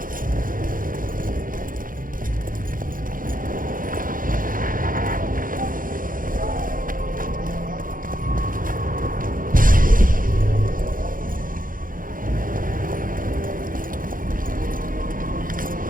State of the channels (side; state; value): left; late; 0.40 ms